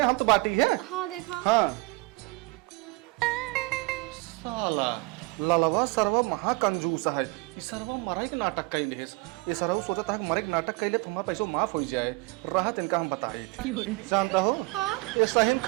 हम तो बाटी है। हाँ देखा हाँ साला ललवा सरवा महा कंजूस है। ये सरवा मराई के नाटक कैले है। ये सरवा सोचता है कि मरे के नाटक कैले तो हमारा पैसा माफ हो जाए। राहत इनका हम बताए थे, जानता हो ये सही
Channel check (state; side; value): quieter; left; 24.7 dB